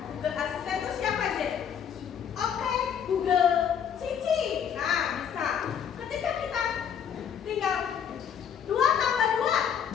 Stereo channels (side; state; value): right; quieter; 8.2 dB